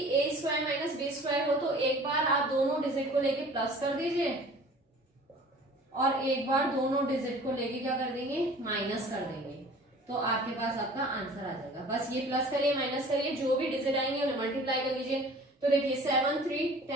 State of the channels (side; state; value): both; normal; correlation 0.46